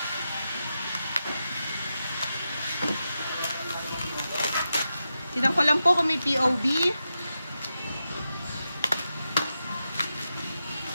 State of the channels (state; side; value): inverted; both; correlation -0.89